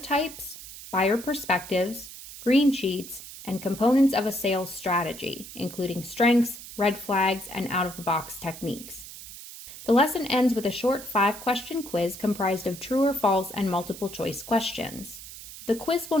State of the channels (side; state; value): right; noise; hiss, 14 dB below the sound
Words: buyer perspectives, green sheets, and components of a sales strategy, including strengths, red flags, and out-of-the-box techniques. The lesson ends with a short 5-question quiz comprised of true or false and multiple-choice questions. The quiz will